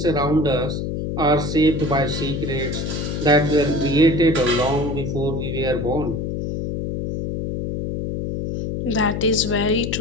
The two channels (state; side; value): noise; left; hum, 3 dB below the sound